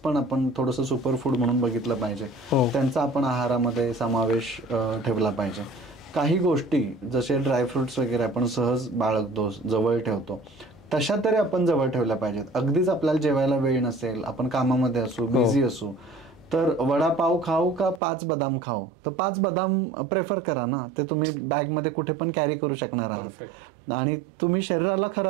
आपण थोडंसं सुपर फूड म्हणून बघितलं पाहिजे. त्यांचा आपण आहारामध्ये समावेश ठेवला पाहिजे. काही गोष्टी जसे ड्रायफ्रुट्स वगैरे आपण सहज बाळगतो, जवळ ठेवतो, तशा तरी आपण जवळ ठेवल्या पाहिजेत. अगदीच आपल्याला जेवायला वेळ नसेल, आपण कामामध्ये असू, बिझी असू, तर वडापाव खाऊ का 5 बदाम खाऊ, तर 5 बदाम प्रेफर करा ना. ते तुम्ही बॅगमध्ये कुठे पण कॅरी करू शकणार आहात. आणि तुम्ही शरीराला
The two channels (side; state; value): left; drops out; at 18.0 s